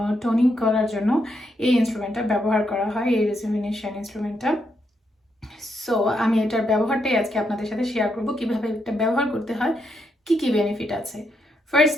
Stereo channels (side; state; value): both; normal; correlation 0.79